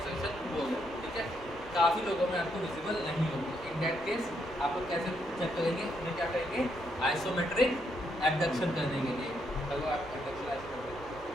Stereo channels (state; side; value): noise; left; hum, 24 dB below the sound